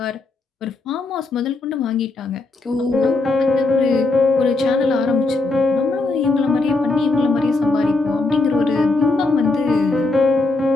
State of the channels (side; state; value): right; quieter; 3.4 dB